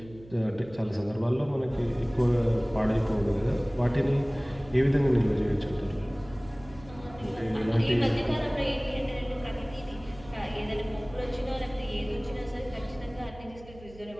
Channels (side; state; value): right; noise; hum, 20 dB below the sound